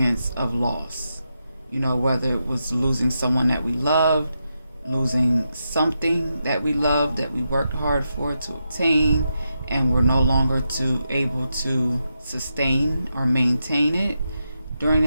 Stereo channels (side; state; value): both; inverted; correlation -0.86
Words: of loss. Whether it was losing someone that we loved, losing something that we loved, that we worked hard for to obtain, and we're no longer able to sustain or maintain it during